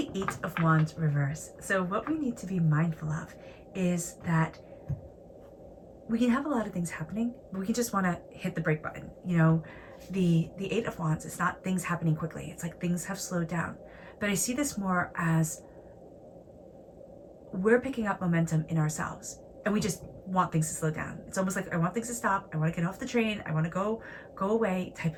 8 of Wands reverse. So what we need to be mindful of is that we can have a lot of things happening, but we can just want to hit the brake button. You know, the 8 of Wands, it's not things happening quickly. It's like things have slowed down. But I see this more as we're picking up momentum in ourselves and we just want things to slow down. It's almost like I want things to stop. I want to get off the train. I want to go away type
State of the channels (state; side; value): identical; both; correlation 1.00